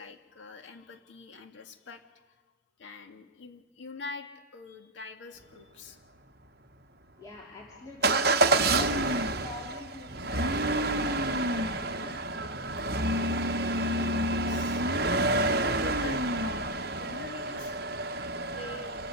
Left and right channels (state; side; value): normal; both; correlation 0.01